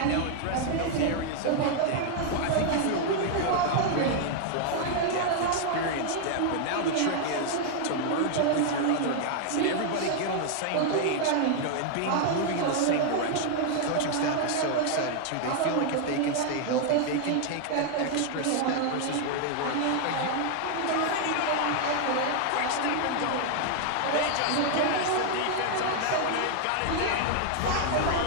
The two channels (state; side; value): different; both; correlation 0.00